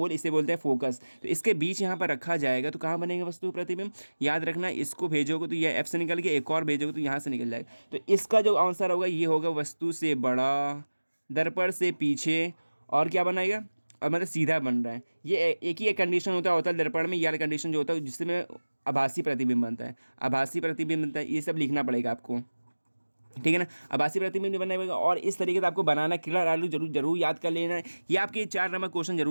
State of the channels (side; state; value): both; inverted; correlation -1.00